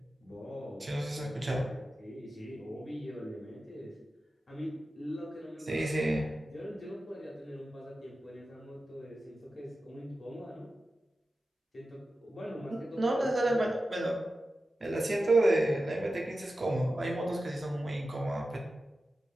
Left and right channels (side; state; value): both; normal; correlation 0.93